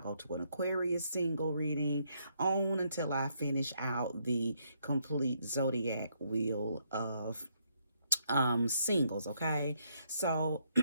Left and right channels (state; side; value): inverted; both; correlation -0.74